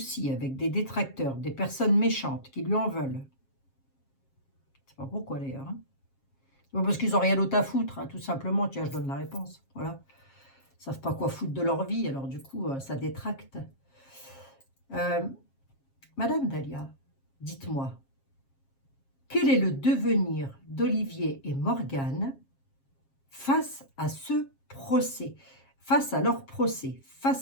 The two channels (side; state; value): right; late; 7.4 ms